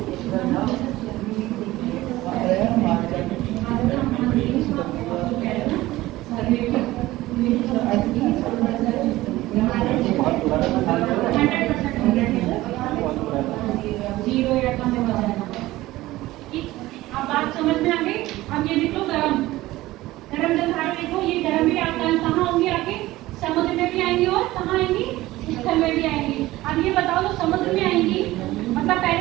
जीरो या कम हो जाएगा। ठीक, अब बात समझ में आ गई। अब ये देखो गरम गरम जलधारा देखो, ये गरम भी आपका कहाँ होंगी, आपके समुद्र में भी आएंगी और कहाँ आएंगी, स्थल में भी आएंगी। अब ये बताओ तो समुद्र में आएंगी, मतलब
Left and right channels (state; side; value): quieter; left; 17.4 dB